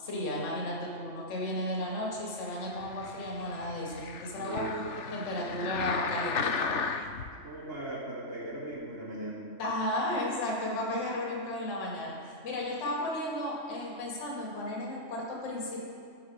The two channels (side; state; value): right; late; 3.4 ms